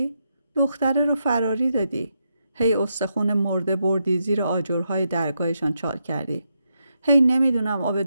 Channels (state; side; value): inverted; both; correlation -0.82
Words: دختره رو فراری دادی. هی استخون مرده بردی زیر آجرهای درگاهشان چال کردی. هی نمیدونم آب